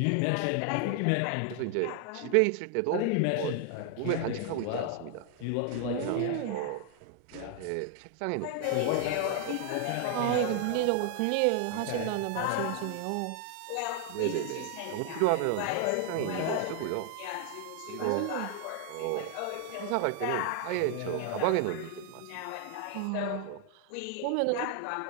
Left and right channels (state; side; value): different; both; correlation 0.00